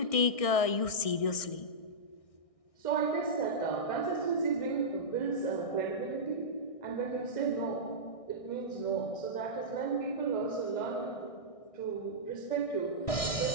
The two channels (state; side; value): late; right; 1.6 ms